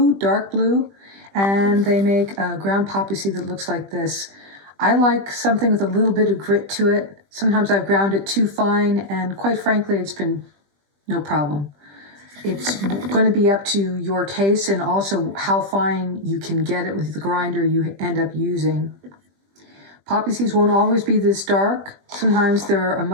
dark blue, and they make a ground poppy seed that looks like this. I like something with a little bit of grit to it. Sometimes I've ground it too fine, and quite frankly, it's been no problem. It's going to be up to your taste and also how fine you can get it with the grinder you end up using. Poppy seeds won't always be this dark. Sometimes they're a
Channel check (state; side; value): late; left; 20 ms